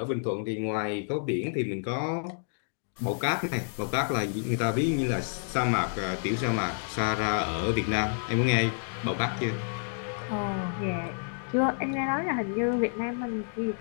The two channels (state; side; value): silent; right; digital silence